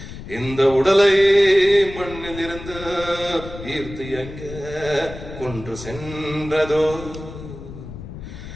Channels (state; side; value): noise; left; rumble, 12 dB below the sound